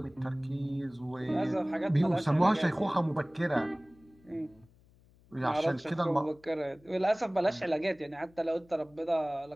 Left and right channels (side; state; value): left; noise; hum, 29 dB below the sound